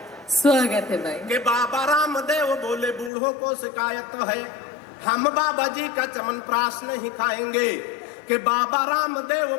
स्वागत है भाई। कि बाबा रामदेव बोले बूढ़ों को शिकायत है, हम बाबा जी का चमनप्राश नहीं खाएंगे। कि बाबा रामदेव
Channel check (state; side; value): drops out; right; at 3.1 s